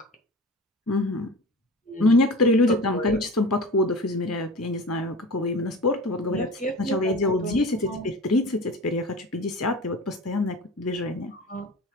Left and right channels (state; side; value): normal; both; correlation 0.35